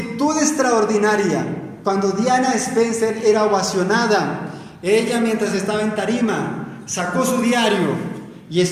extraordinaria, cuando Diana Spencer era ovacionada, ella, mientras estaba en tarima, sacó su diario y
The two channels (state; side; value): identical; both; correlation 1.00